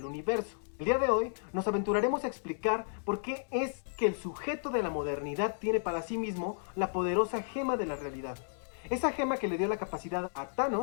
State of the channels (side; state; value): right; silent; digital silence